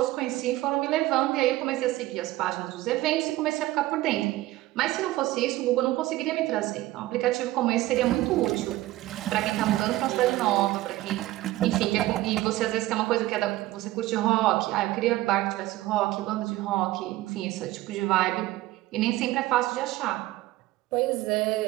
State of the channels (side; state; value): left; quieter; 17.0 dB